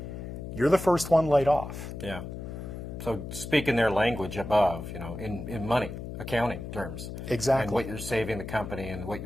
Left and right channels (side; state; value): left; noise; hum, 8 dB below the sound